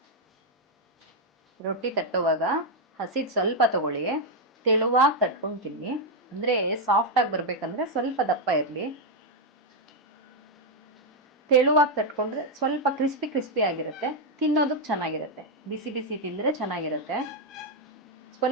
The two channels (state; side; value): normal; both; correlation 0.00